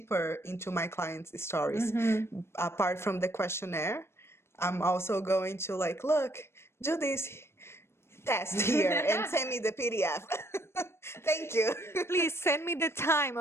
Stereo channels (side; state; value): right; late; 0.12 ms